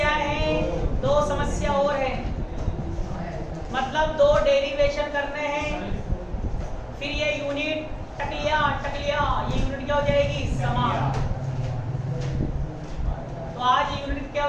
हैं? दो समस्या और है, मतलब दो डेरिवेशन करने हैं। फिर ये यूनिट टकलिया ये यूनिट क्या हो जाएगी? समाप्त। तो आज ये यूनिट क्या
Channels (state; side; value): identical; both; correlation 1.00